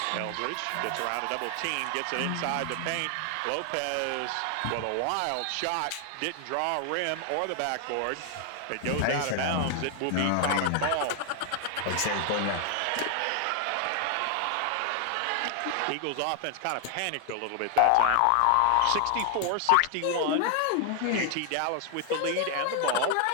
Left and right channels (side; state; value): both; different; correlation 0.00